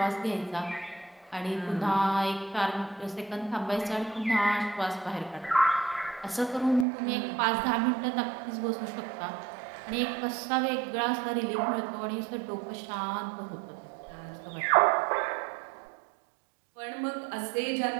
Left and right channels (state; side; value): drops out; left; at 6.9 s